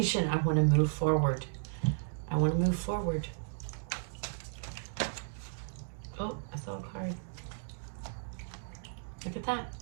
I want to move forward. I want to move forward. Oh, I saw a card. Look at that.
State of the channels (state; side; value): silent; left; digital silence